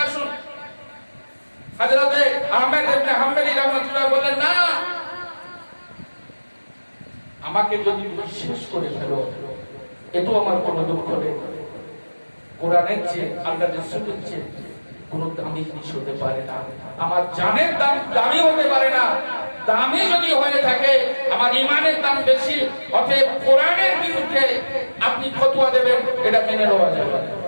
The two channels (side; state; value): both; inverted; correlation -1.00